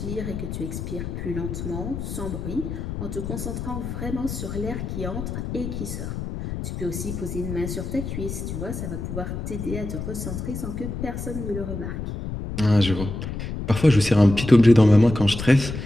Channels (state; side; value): noise; left; rumble, 6 dB below the sound